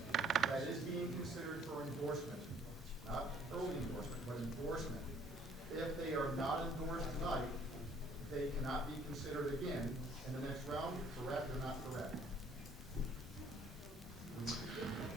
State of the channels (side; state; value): both; normal; correlation 0.59